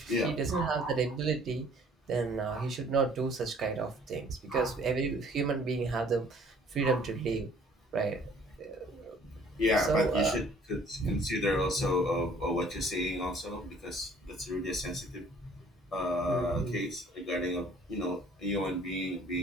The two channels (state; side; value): normal; both; correlation 0.56